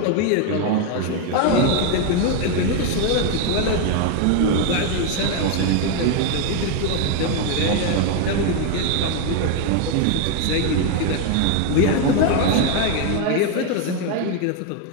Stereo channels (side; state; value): both; different; correlation 0.01